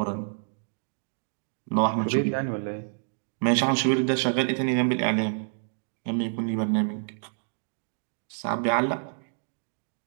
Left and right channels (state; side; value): silent; left; digital silence